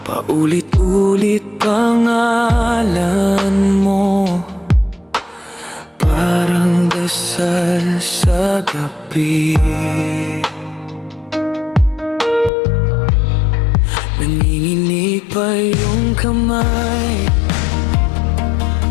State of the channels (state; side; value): drops out; right; at 12.5 s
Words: Paulit-ulit pangalan mo, parang dasal sa gabi. Nanginginig pa yung kamay